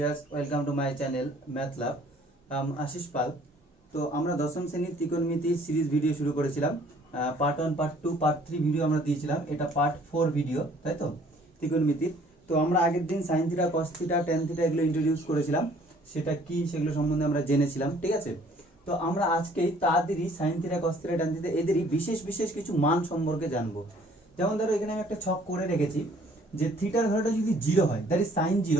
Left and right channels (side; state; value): both; normal; correlation 0.58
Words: welcome to my channel math lab. Ashis Pal. তো আমরা দশম শ্রেণীর ত্রিকোণমিতি সিরিজ ভিডিও শুরু করেছিলাম। পার্ট 1 পার্ট 2 পার্ট 3 ভিডিও আমরা দিয়েছিলাম, এটা পার্ট 4 ভিডিও, তাই তো ত্রিকোণমিতির। তো আমরা আগের দিন sign theta cos theta tan theta এগুলো ইন্ট্রোডিউস করেছিলাম, সেটা কি সেগুলো সম্বন্ধে আমরা জেনেছিলাম, ঠিক আছে। তো আমরা আজকেই তাদেরই sine theta cos theta tan theta এদেরই বিশেষ বিশেষ কিছু মান সম্পর্কে জানবো। যেমন ধরো এখানে আমি একটা ছক করে রেখেছি যে থিটার ভ্যালুটা যদি 0 হয়, দ্যাট ইজ সাইন